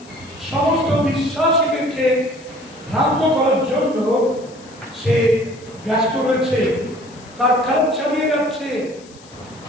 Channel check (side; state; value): left; noise; hiss, 24 dB below the sound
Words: সমস্ত বিশ্বাসীদেরকে ভ্রান্ত করার জন্য সে ব্যস্ত রয়েছে, তার কাজ চালিয়ে যাচ্ছে।